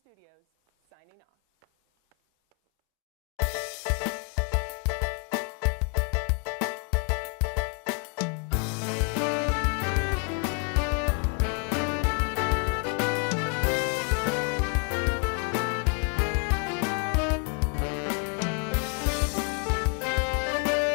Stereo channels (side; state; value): right; quieter; 37.4 dB